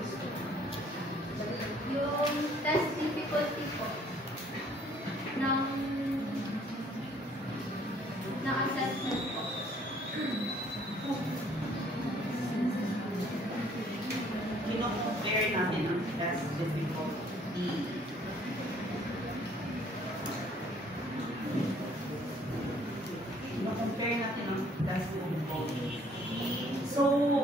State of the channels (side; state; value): both; normal; correlation 0.60